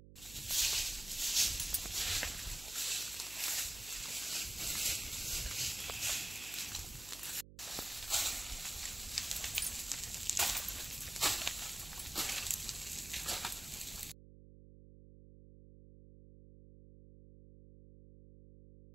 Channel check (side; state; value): right; noise; hum, 17 dB below the sound